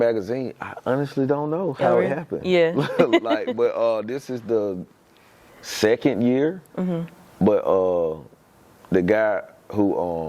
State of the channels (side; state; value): both; identical; correlation 1.00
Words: I honestly don't know how it happened. Yeah. But this is the 2nd year. But the guy